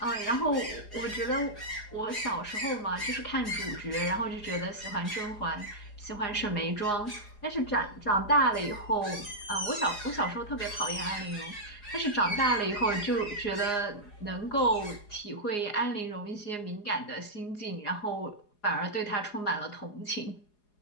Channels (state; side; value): late; right; 4.8 ms